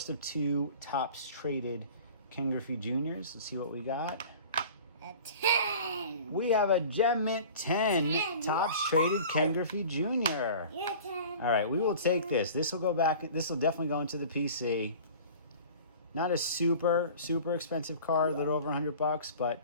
of 2 Topps traded Ken Griffey Juniors. Let's see what we got. A 10. We have a Gem Mint 10 Topps traded Ken Griffey Jr. Yeah, 10. All right, we will take this. This will go back. This will definitely go into the PC. Not a super expensive card, a little over $100, but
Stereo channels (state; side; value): inverted; both; correlation -0.42